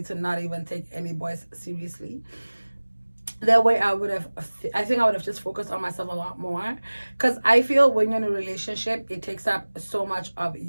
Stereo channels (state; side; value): inverted; both; correlation -1.00